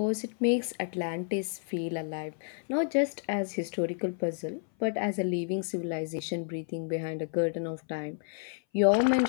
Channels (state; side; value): silent; right; 57 dB below the other